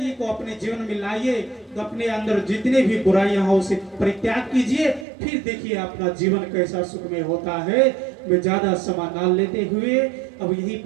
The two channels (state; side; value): drops out; left; at 5.1 s